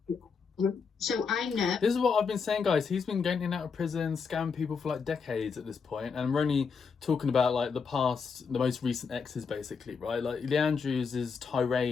So I know. This is what I've been saying, guys. He's been getting out of prison, scamming people for like decades at this point, and we're only talking about like the most recent exes, basically, right? Like, Lee Andrews'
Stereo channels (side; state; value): right; quieter; 5.6 dB